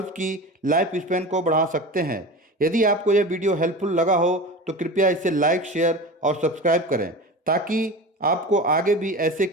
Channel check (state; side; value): normal; both; correlation 0.31